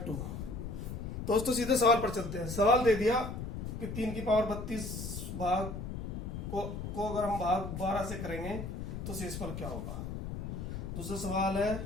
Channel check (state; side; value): noise; left; rumble, 6 dB below the sound